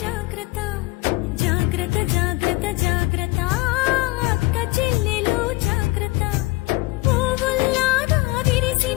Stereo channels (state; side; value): quieter; right; 21.7 dB